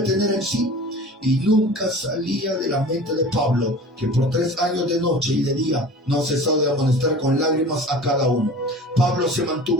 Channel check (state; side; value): normal; both; correlation 0.40